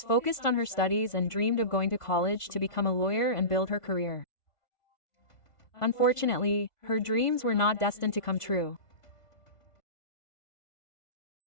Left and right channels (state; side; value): late; right; 1.5 ms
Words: focused on her studies and dreamed of going to college to become a lawyer and build her career. Unfortunately, her dreams were not destined to come true.